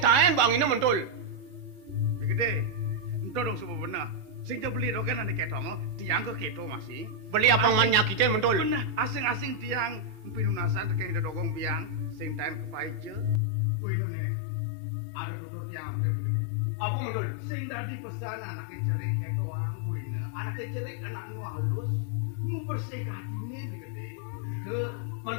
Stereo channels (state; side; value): drops out; right; at 13.4 s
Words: bang ini mentul. Gede, ento dong semua benar. Sing beli dong kan ane ketong, tiang ke keto masih. Beli apang man nyakitin mentul. Benar, asing-asing tiang, pinunasan teken ida dogong biang, sing taen kepaije. Puinu nih, ada tutur tiang apa gede. Apa mentul? Sing dadi pesan anake cerik ketoang buine, anake cerik anak nu halus, nu bersih katine beli gede. Tuh.